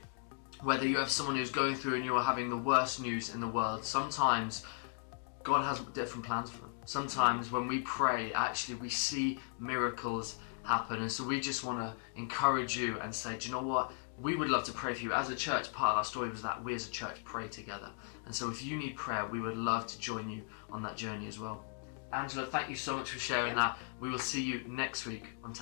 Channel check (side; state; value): right; silent; 53 dB below the other